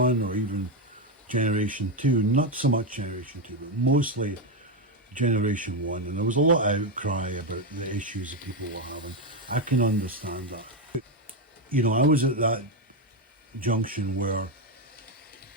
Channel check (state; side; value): normal; both; correlation 0.07